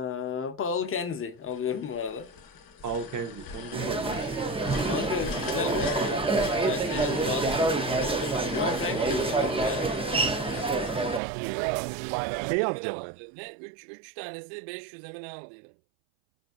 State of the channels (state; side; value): drops out; left; at 11.2 s